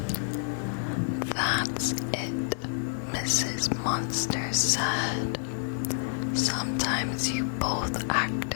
That's it, Mrs. Monster said. Sometimes you both act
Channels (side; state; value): right; silent; digital silence